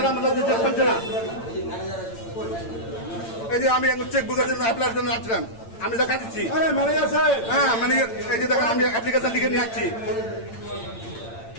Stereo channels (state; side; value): late; right; 8.9 ms